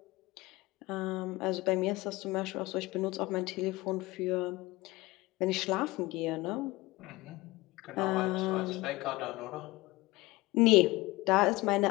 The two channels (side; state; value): right; quieter; 20.8 dB